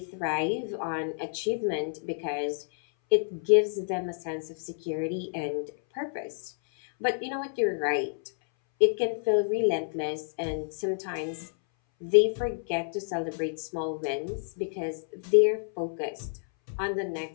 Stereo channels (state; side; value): silent; right; 59 dB below the other